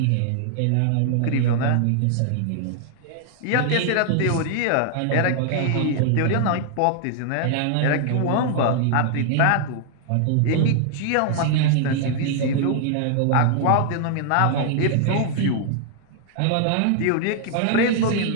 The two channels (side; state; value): both; different; correlation 0.00